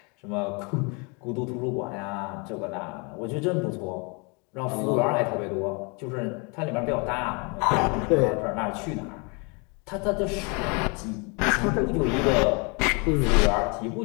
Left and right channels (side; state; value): right; quieter; 32.0 dB